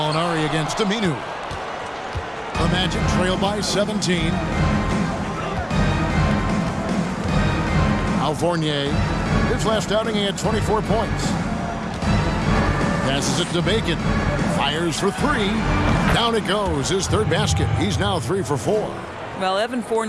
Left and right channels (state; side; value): identical; both; correlation 1.00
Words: against Aminu. The Magic trail by 17. Al Fournier, his last outing, he had 24 points. Passes it to Bacon. Fires for three. Down it goes. His third basket. He's now 3 for 4. Well, Evan